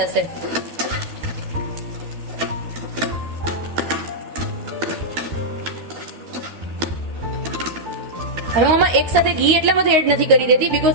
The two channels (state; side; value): late; left; 12 ms